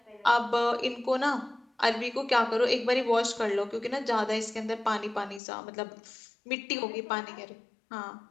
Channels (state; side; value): drops out; right; at 5.4 s